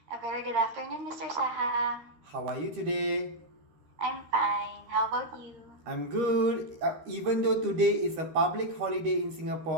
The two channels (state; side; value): late; left; 13 ms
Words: A very good afternoon, Mr. Saha. How are you today? I'm fine. How about you? I'm good. Even though today is a public holiday in